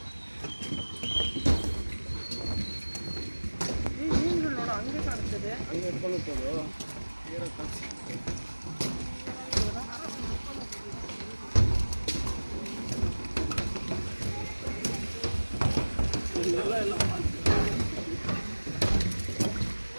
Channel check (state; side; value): inverted; both; correlation -1.00